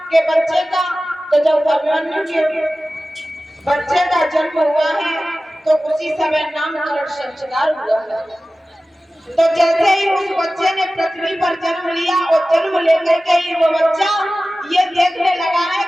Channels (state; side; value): normal; both; correlation 0.96